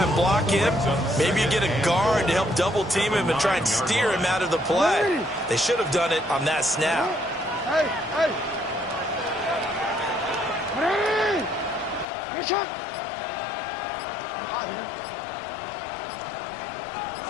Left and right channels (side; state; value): right; drops out; at 12.1 s